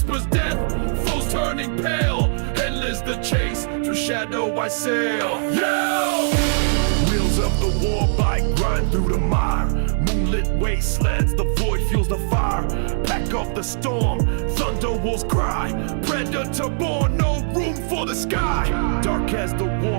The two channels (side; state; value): left; silent; 64 dB below the other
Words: death, foes turning pale. Endless the chase, through shadow I sail. Yeah! Wheels of the war bike grind through the mire. Moonlit wastelands, the void fuels the fire. Pack of the storm, thunder wolves cry. Predator born, no room for the sky. Dark as the